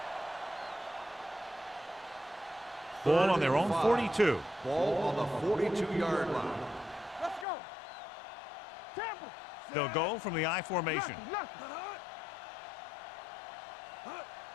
Ball on their own 42. Ball on the 42-yard line. Let's go. Tampa. They'll go from the I formation.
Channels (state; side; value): drops out; right; at 7.5 s